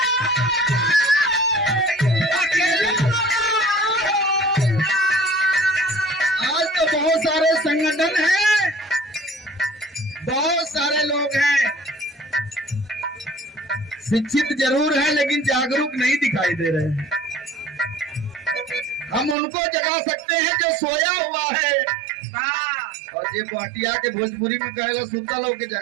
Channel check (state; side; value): drops out; left; at 19.4 s